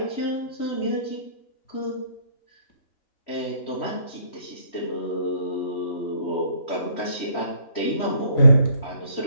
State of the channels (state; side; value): late; right; 3.1 ms